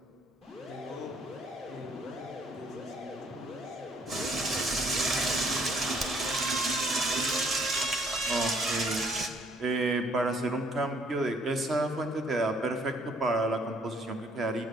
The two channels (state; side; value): normal; both; correlation 0.63